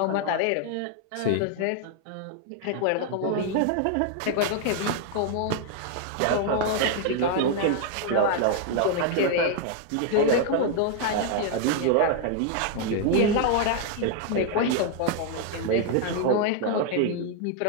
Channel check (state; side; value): different; both; correlation 0.00